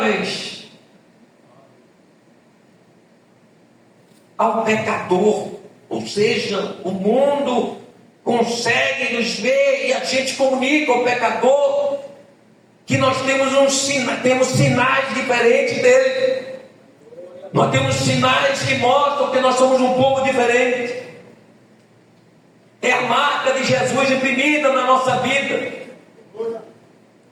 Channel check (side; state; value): both; identical; correlation 1.00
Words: ao pecador. Ou seja, o mundo consegue nos ver e a gente comunica ao pecador que nós temos sinais diferentes dele. Nós temos sinais que mostram que nós somos um povo diferente. É a marca de Jesus imprimida na nossa vida.